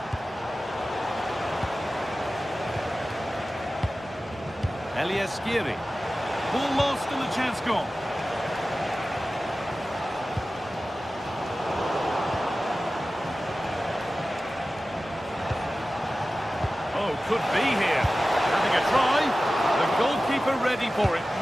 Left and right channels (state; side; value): normal; both; correlation 0.95